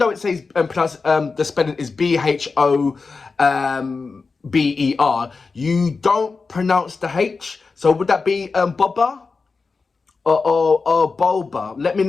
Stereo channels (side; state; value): right; quieter; 4.4 dB